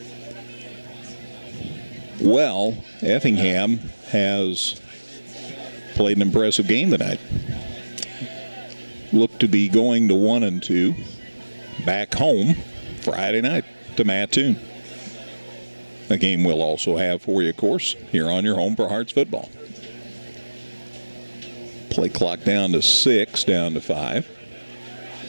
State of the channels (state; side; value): inverted; both; correlation -1.00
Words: Well, Effingham has played an impressive game tonight. Look to be going to 1-2 back home Friday night to Mattoon. A game we'll also have for you, of course, here on your home for Hearts football. Play clock down to 6, down to 5.